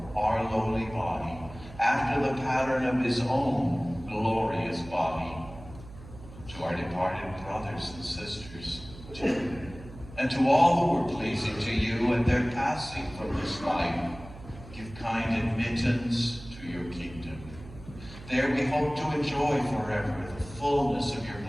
our lowly body after the pattern of his own glorious body. To our departed brothers and sisters, too, and to all who were pleasing to you at their passing from this life, give kind admittance to your kingdom. There we hope to enjoy forever the fullness of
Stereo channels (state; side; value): noise; right; hum, 17 dB below the sound